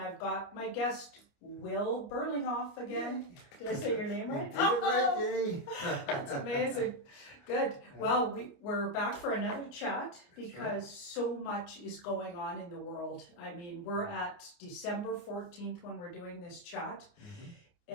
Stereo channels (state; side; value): late; right; 29 ms